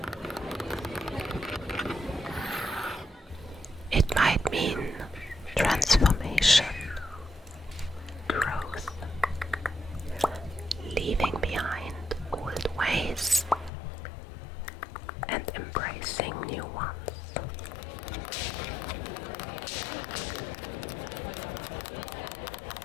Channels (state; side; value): drops out; right; at 13.7 s